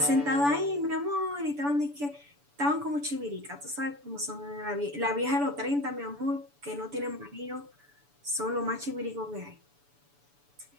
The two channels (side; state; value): left; late; 7.0 ms